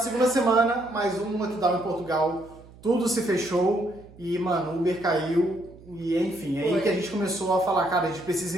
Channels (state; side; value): noise; right; hum, 22 dB below the sound